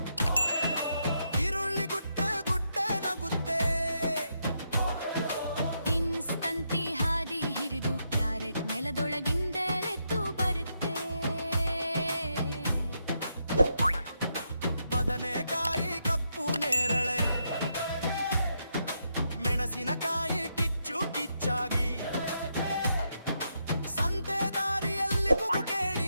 ಈರುಳ್ಳಿ ಗುಡ್ಡೆ ಗುಡ್ಡೆ ನಗುತ್ತೆ. ಬೀನ್ಸ್ ತಂತಿ ಹಾದಿ ಹಿರಿದು, ಕ್ಯಾರೆಟ್ ನೆಲದೊಳಗಿಂದೆಳೆದ್ದು ಬರುತ್ತೆ. ಬದನೆಕಾಯಿ ಕಪ್ಪು ನೇರಳೆ, ಮೆಣಸಿನಕಾಯಿ ಕಿಚ್ಚು ಕಿಚ್ಚಾಗಿ, ಸಂತೆ ದಾರಿಯಲ್ಲಿ ಕೂಗು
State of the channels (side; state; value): both; inverted; correlation -0.80